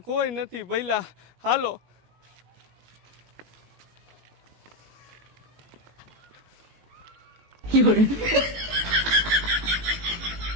કોઈ નથી ભઈલા, હાલો.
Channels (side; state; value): left; late; 18 ms